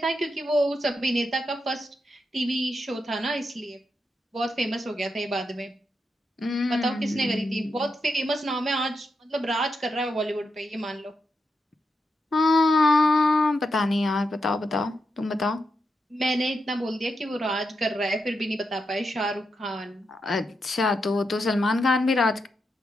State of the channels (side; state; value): both; normal; correlation 0.85